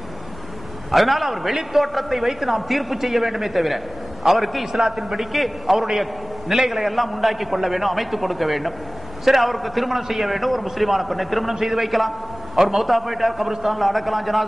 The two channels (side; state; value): both; normal; correlation 0.98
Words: அதனால அவர் வெளித்தோற்றத்தை வைத்து நாம் தீர்ப்பு செய்ய வேண்டுமே தவிர அவருக்கு இஸ்லாத்தின் படிக்கு அவருடைய நிலைகளை எல்லாம் உண்டாக்கி கொள்ள வேண்டும், அமைத்துக் கொடுக்க வேண்டும். சரி, அவருக்கு திருமணம் செய்ய வேண்டும், ஒரு முஸ்லிமான பெண்ணை திருமணம் செய்து வைக்கலாம், அவர் மௌத்தா போயிட்டார், கபிரிஸ்தான்ல அடக்கலாம்,